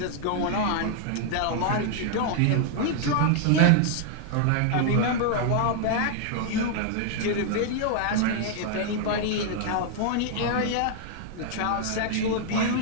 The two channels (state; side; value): different; both; correlation 0.00